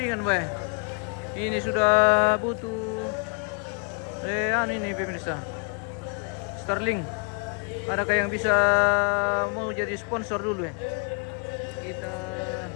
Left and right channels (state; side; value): quieter; right; 37.6 dB